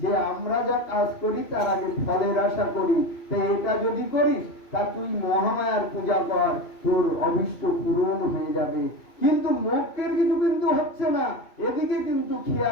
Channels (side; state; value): right; late; 2.5 ms